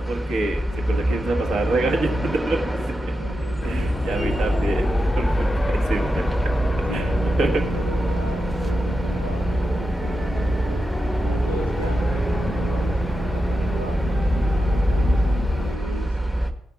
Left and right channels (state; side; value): normal; both; correlation 0.89